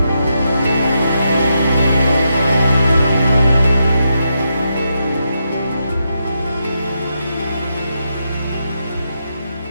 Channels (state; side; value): inverted; both; correlation -0.83